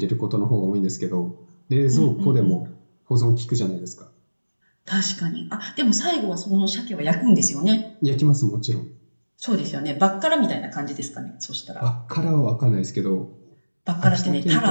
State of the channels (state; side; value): inverted; both; correlation -1.00